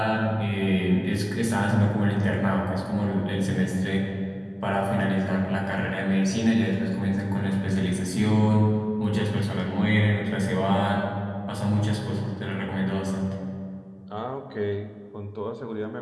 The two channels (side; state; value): both; identical; correlation 1.00